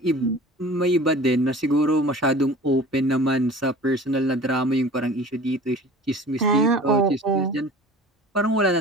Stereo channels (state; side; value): normal; both; correlation 0.41